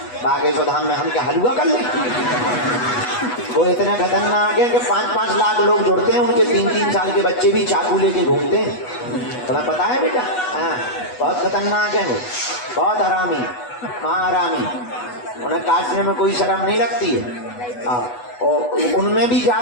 बागेश्वर धाम में हम क्या हलवा कर लें? वो इतने खतरनाक है कि 5-5 लाख लोग जुड़ते हैं, उनके 3-3 साल के बच्चे भी चाकू लेके घूमते हैं। तुम्हें पता है बेटा? हाँ, बहुत खतरनाक है वो, बहुत हरामी, महारामी। उन्हें काटने में कोई शर्म नहीं लगती है। हाँ, और उनमें भी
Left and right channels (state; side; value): late; right; 8.1 ms